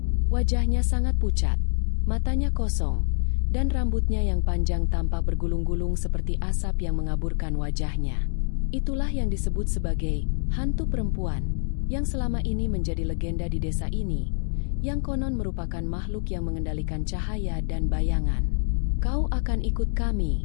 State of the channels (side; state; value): right; silent; 61 dB below the other